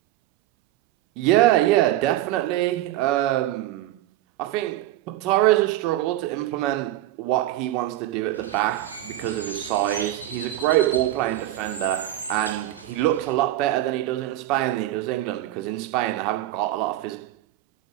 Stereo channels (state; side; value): quieter; left; 14.4 dB